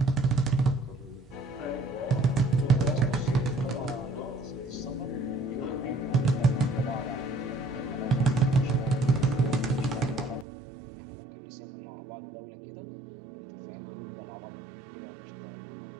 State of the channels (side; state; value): left; drops out; at 10.5 s